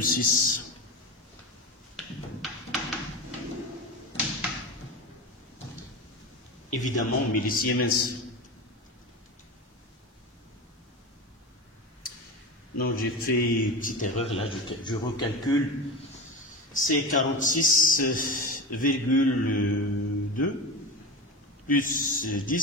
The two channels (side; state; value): both; normal; correlation 0.24